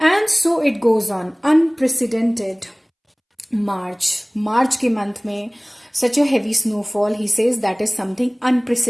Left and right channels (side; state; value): both; identical; correlation 1.00